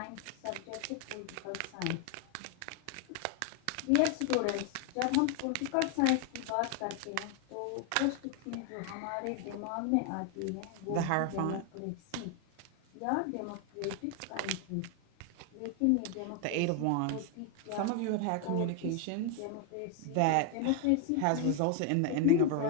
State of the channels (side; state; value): both; different; correlation 0.00